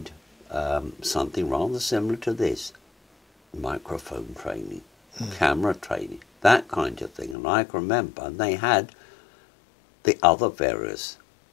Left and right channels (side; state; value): right; drops out; at 7.4 s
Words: something rather similar to this: microphone training, camera training, that kind of thing. And I can remember they had the other various,